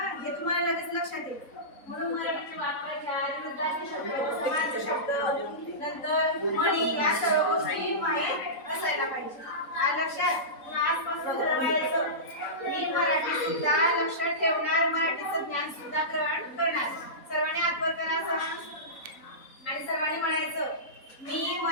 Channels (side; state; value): right; late; 3.9 ms